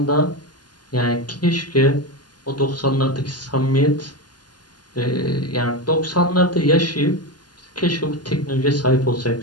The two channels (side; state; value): right; late; 0.70 ms